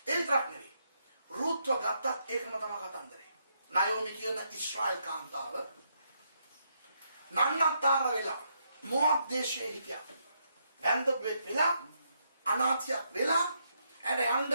ඒ විතරක් නෙවෙයි. රුත්ව ගත්තත් ඒකම තමයි කතන්දරේ. නයෝමි කියන ඉස්රායල් කාන්තාව නන්නතර වෙලා මො압් දේශයේ හිටියා. වැන්දපෙක් වෙලා අනාථයක් වෙලා ඇඩ යන්න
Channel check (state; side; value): inverted; both; correlation -0.77